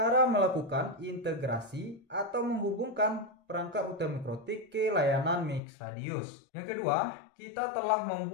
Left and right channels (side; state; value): right; drops out; at 5.6 s